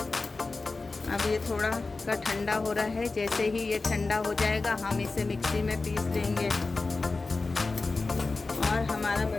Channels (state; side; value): quieter; right; 3.7 dB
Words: अब ये थोड़ा का ठंडा हो रहा है। जैसे ही ये ठंडा हो जाएगा हम इसे मिक्सी में पीस लेंगे और हमारा